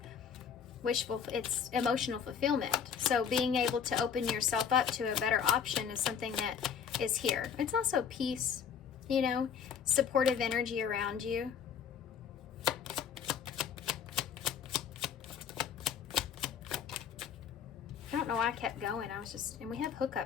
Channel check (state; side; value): quieter; right; 7.4 dB